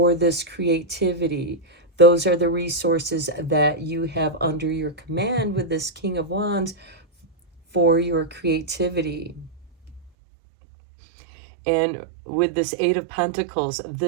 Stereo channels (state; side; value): drops out; left; at 10.1 s